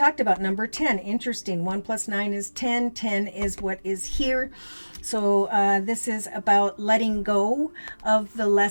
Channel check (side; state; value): both; inverted; correlation -1.00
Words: about, number 10. Interesting. 1 plus 9 is 10. 10 is what is here. So this is about letting go of the